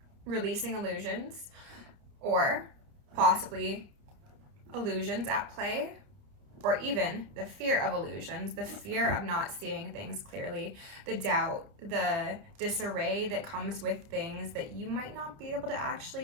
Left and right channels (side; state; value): left; late; 29 ms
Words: releasing illusions, or possibly illusions at play, or even the fear of illusions, the fear of not seeing things clearly, the doubt, the disarray that comes with things that you might not be able to